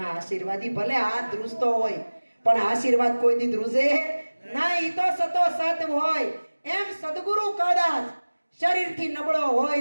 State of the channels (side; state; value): both; inverted; correlation -1.00